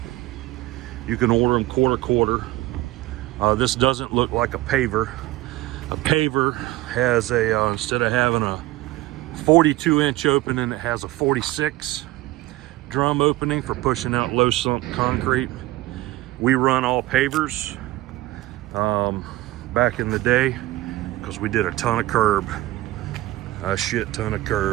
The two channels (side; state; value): left; quieter; 17.9 dB